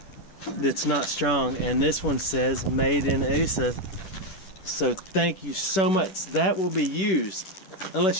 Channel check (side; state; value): right; late; 10 ms